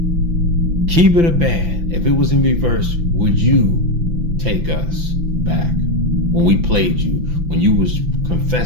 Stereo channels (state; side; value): late; left; 5.9 ms